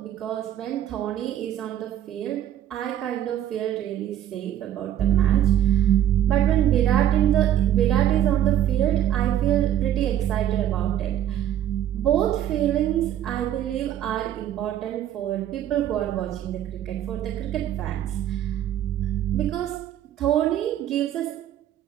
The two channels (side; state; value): left; quieter; 11.2 dB